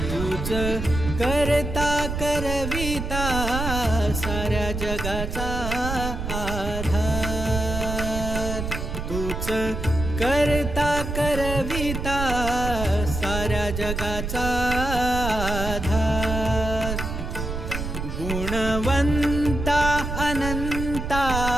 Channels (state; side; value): noise; right; rumble, 4 dB below the sound